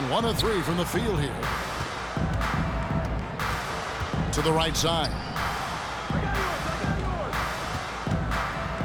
1 of 3 from the field here. To the right side.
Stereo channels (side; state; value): both; identical; correlation 1.00